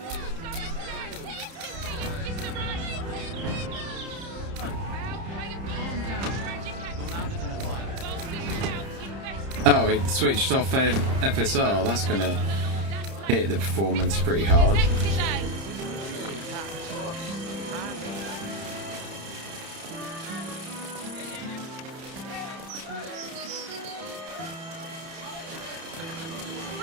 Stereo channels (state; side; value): late; left; 31 ms